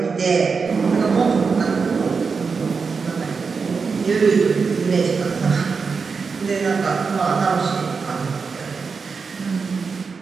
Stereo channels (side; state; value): left; quieter; 5.1 dB